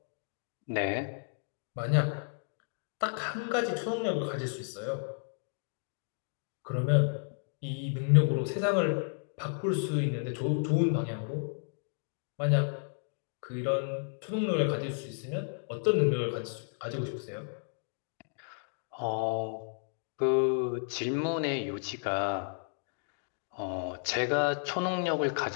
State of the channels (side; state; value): right; silent; digital silence